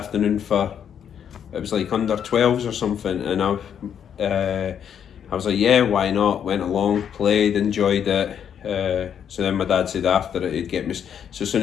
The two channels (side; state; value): right; quieter; 8.5 dB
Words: for?" It was like under 12s or something, and I was like, "Yeah, why not?" Went along, played, enjoyed it. So then my dad said after it he'd get me. So as